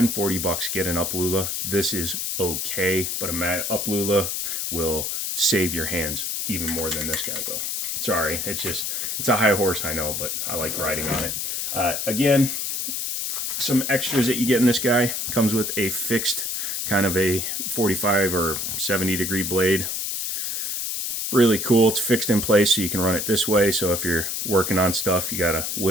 40 bucks, get an Uplula. This is okay, but a Uplula will save your hands even more than this guy will. Sorry, it's a high horse, I know, but I like riding on it. Again, some extras that you get in this guy. Comes with a fixed kind of a 45 or 70 degree blade. Really cool. It's fixed in place so you can run it this way. So if you're working on stuff, you got to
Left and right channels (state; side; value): noise; left; hiss, 2 dB below the sound